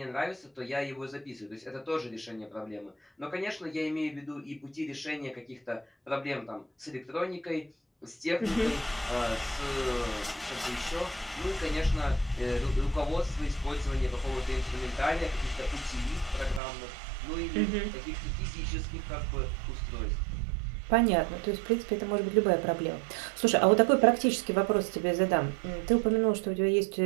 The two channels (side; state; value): left; drops out; at 16.6 s